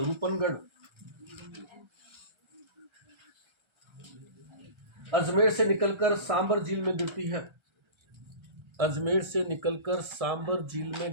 अजमेर से निकलकर सांबर झील में गिरती है। अजमेर से निकलकर सांबर झील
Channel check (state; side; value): late; left; 1.3 ms